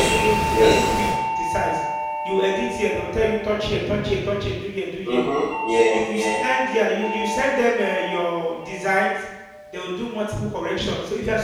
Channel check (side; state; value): both; identical; correlation 1.00